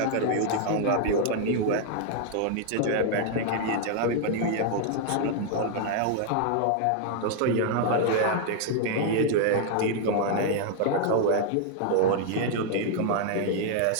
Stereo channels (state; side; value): different; both; correlation 0.00